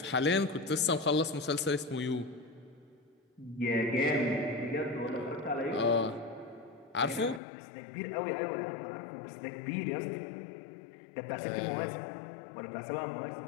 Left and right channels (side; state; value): right; drops out; at 7.4 s